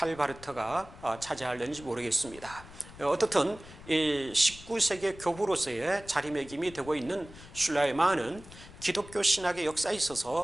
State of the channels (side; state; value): left; noise; rumble, 18 dB below the sound